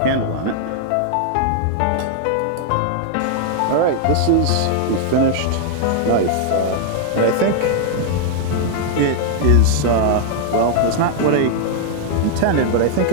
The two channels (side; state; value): both; different; correlation 0.00